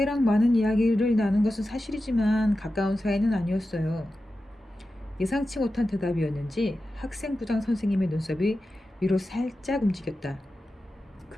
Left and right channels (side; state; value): both; normal; correlation 0.92